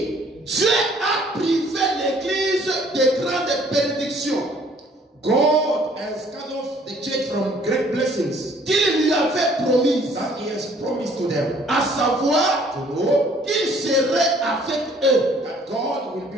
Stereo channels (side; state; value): both; normal; correlation 0.58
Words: Dieu a privé l'Église de grandes bénédictions God has cut off the church from great blessings qu'il lui avait promises, that he has promised to them. à savoir To know qu'il serait avec eux. that God will